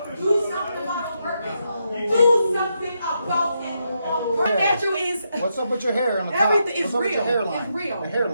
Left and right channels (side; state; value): both; inverted; correlation -0.82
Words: Do something about the workers. Do something about it. What natural is What's up with your hair on the top? everything is What's up with your real. hairline? It's real. The